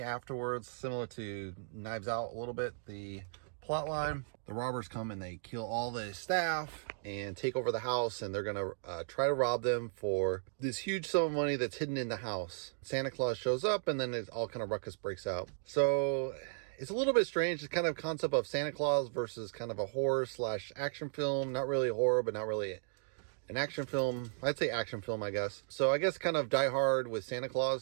afterwards, similar to Knives Out a little bit, the plot line. The robbers come and they kill all the staff and take over the house, and they're gonna try to rob them for this huge sum of money that's hidden in the house. Santa Claus shows up, and then it's all kind of ruckus breaks out. So it's a little bit strange. It's kind of concept of Santa Claus versus kind of a horror slash action film. Not really a horror, but not really an action film. I'd say action film, I guess. So I guess kind of Die Hard with Santa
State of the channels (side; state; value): left; silent; digital silence